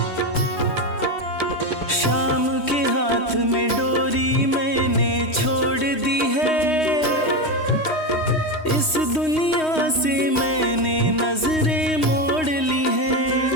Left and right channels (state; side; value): late; right; 3.2 ms